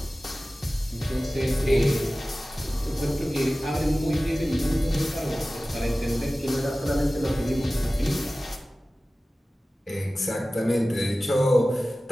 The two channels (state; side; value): normal; both; correlation 0.96